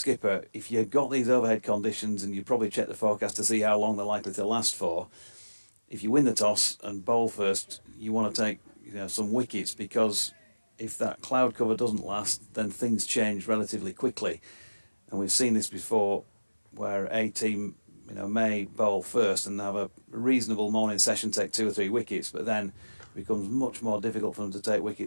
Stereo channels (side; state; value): both; inverted; correlation -1.00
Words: If you've got these overhead conditions, and you probably check the forecast to see how long they're likely to last for, if you win the toss and bowl first, you want to take some wickets, because if that cloud cover doesn't last, then things change relatively quickly. And we've seen this before, where a team may bowl first and have a reasonable morning session, take 2 or 3 wickets, but then it becomes much more difficult for them to take